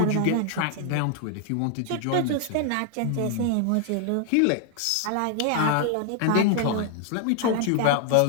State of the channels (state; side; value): different; both; correlation 0.00